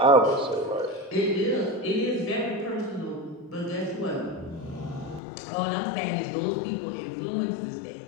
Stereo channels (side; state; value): right; drops out; at 5.2 s